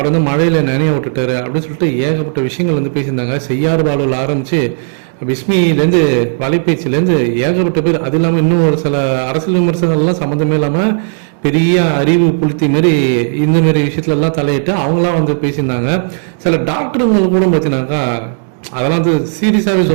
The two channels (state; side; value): silent; left; digital silence